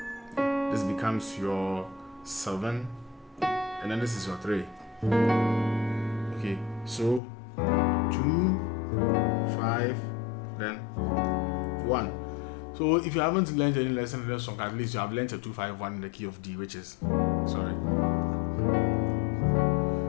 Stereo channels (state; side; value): drops out; right; at 7.2 s